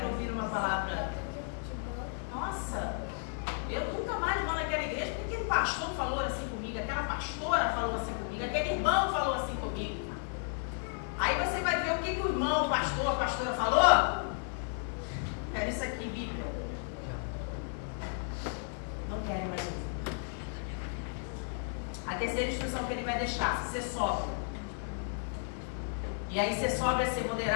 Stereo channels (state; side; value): silent; right; 55 dB below the other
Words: ouvir uma palavra? Nossa, eu nunca mais vou naquela igreja porque aquele pastor falou assim comigo, aquela pastora falou assim comigo, aquele irmão falou assim comigo. Aí você vai ver o que o irmão, o pastor, a pastora falou. Era isso aqui, Bíblia. Não querem mais ouvir. A terceira instrução que ele vai deixar: ser sóbrio. E aí ser sóbrio é ser